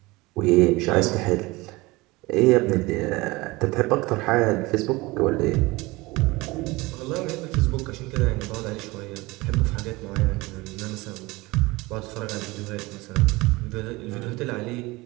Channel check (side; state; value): left; quieter; 22.1 dB